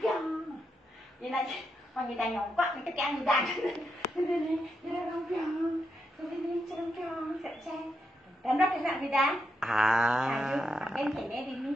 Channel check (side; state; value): both; normal; correlation 0.83